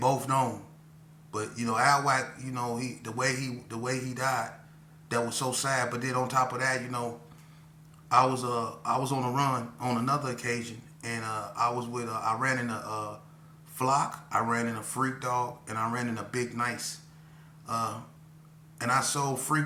known. But, Al Wack, the way he died, that was so sad. But then on top of that, I was on a run on another occasion, and I ran in a flock, I ran in a freak dog, and I ran in a big nice, and I sold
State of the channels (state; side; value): identical; both; correlation 1.00